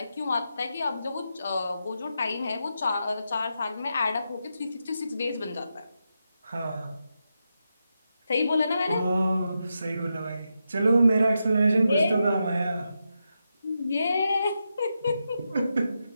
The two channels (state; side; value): inverted; both; correlation -0.86